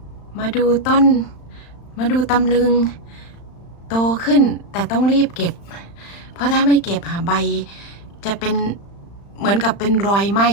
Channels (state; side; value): late; right; 35 ms